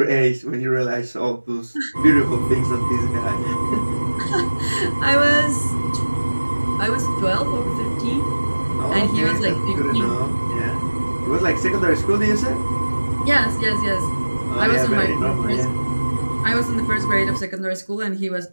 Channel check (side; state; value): both; inverted; correlation -1.00